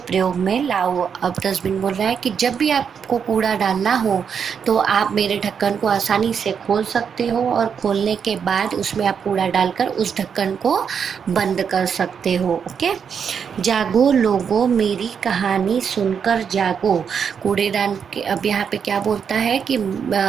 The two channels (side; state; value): left; quieter; 7.0 dB